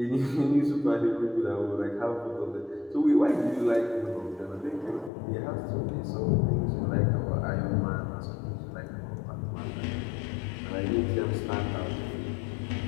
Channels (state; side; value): drops out; right; at 5.1 s